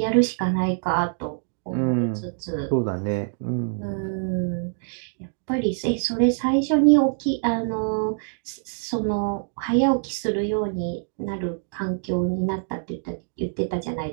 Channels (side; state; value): left; silent; digital silence